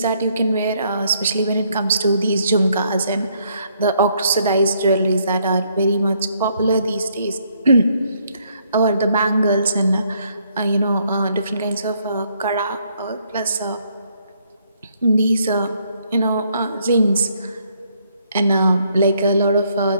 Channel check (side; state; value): both; inverted; correlation -0.70